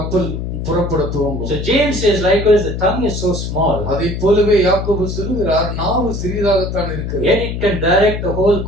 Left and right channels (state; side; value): noise; left; hum, 4 dB below the sound